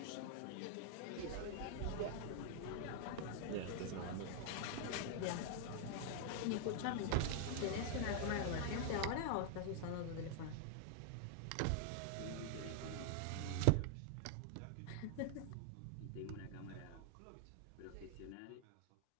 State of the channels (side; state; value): both; different; correlation 0.00